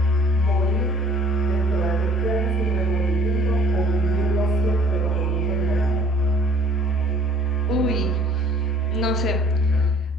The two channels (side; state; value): both; normal; correlation 0.54